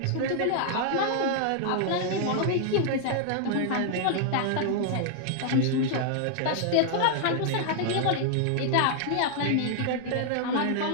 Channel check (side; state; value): both; different; correlation 0.00